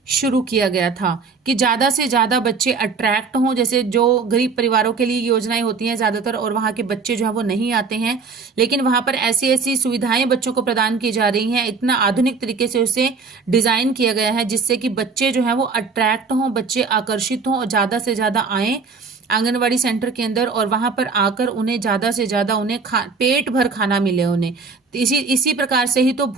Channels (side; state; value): left; quieter; 4.8 dB